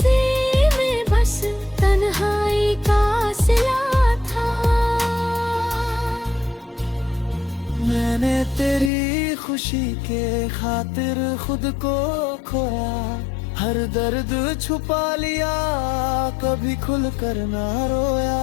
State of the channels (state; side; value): drops out; right; at 8.9 s